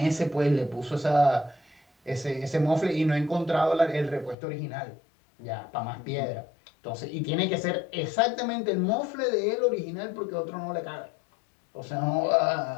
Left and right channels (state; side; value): drops out; right; at 4.4 s